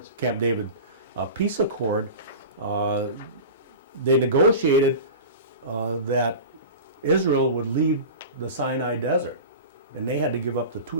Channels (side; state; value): both; inverted; correlation -0.32